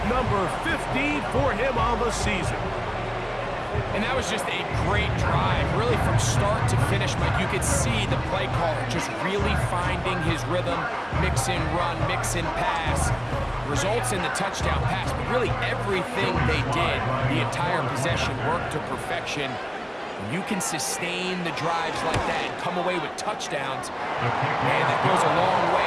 number 15 for him on the season. And that was just a great drive, really from start to finish, Mike. You could see the play caller just really finding his rhythm, mix in run, mix in pass. Results in the touchdown pass, but really everything they did, the entire possession worked to perfection. When you can sustain the drives like that and come away with touchdowns, man, that goes a long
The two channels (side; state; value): both; identical; correlation 1.00